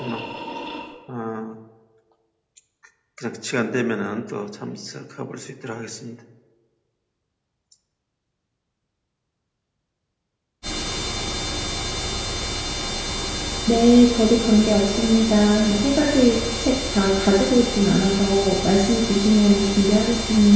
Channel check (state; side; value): identical; both; correlation 1.00